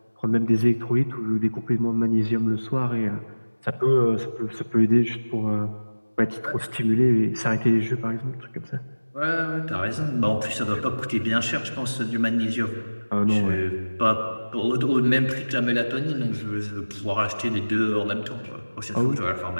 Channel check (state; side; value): inverted; both; correlation -1.00